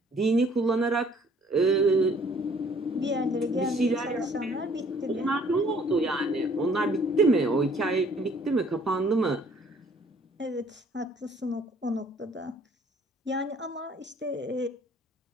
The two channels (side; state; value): both; normal; correlation 0.59